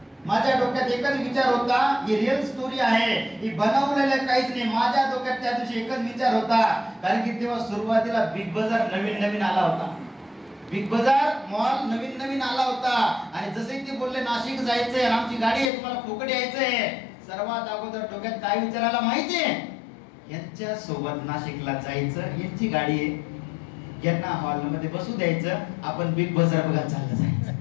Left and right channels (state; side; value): drops out; right; at 15.7 s